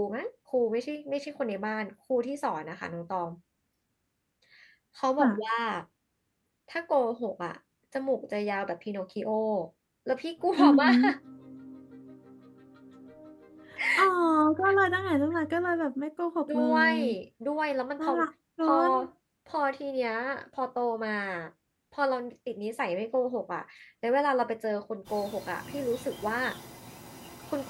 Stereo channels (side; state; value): both; identical; correlation 1.00